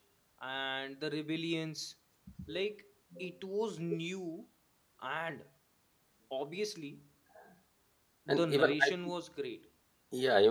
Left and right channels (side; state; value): both; identical; correlation 1.00